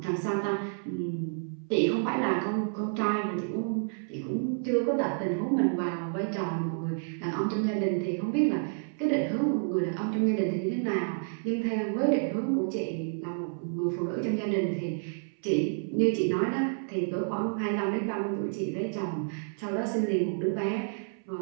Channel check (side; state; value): left; silent; 58 dB below the other